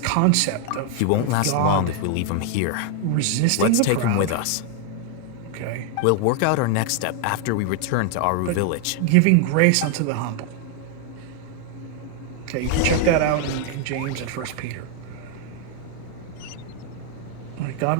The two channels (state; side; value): different; both; correlation 0.00